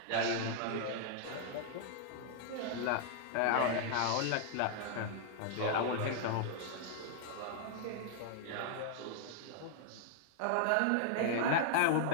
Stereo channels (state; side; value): different; both; correlation -0.01